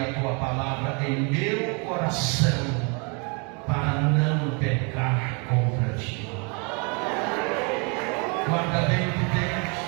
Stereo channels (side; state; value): left; quieter; 33.5 dB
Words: tua palavra em meu coração, para não pecar contra ti. Guarda bem o que tens,